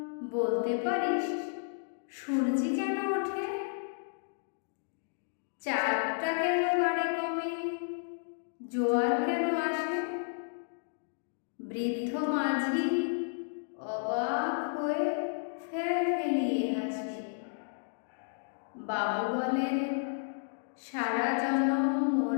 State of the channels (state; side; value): silent; right; digital silence